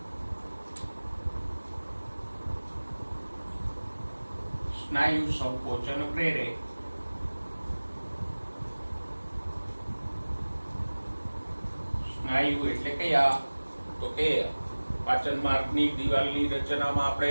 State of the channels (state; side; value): inverted; both; correlation -1.00